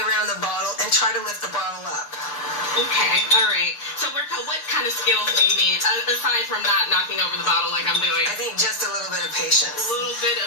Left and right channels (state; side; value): late; right; 6.7 ms